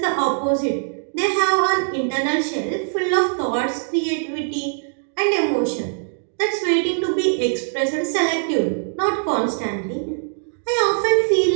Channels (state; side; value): silent; left; digital silence